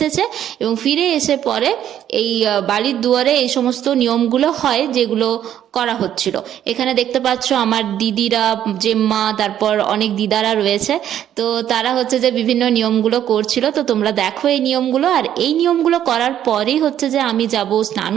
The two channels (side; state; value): left; quieter; 10.7 dB